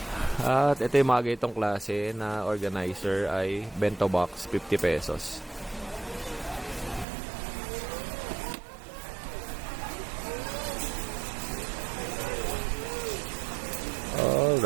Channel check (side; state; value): left; drops out; at 7.1 s